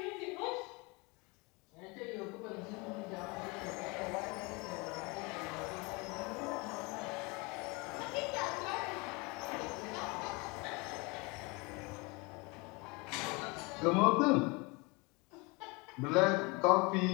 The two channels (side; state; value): right; quieter; 27.5 dB